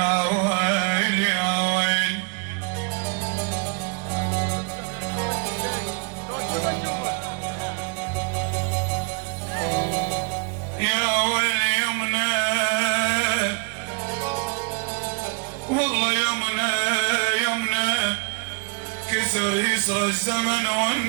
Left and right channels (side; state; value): left; quieter; 32.9 dB